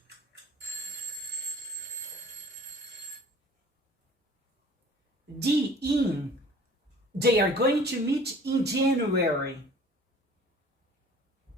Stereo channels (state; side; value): normal; both; correlation 0.48